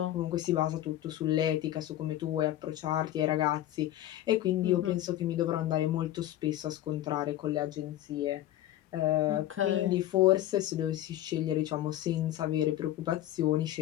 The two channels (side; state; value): right; quieter; 13.5 dB